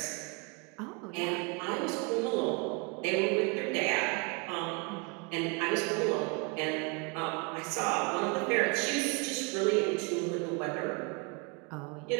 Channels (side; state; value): left; quieter; 31.1 dB